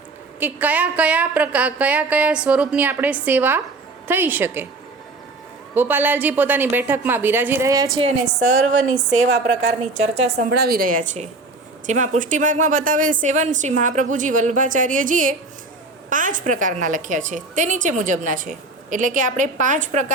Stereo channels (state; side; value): quieter; left; 3.3 dB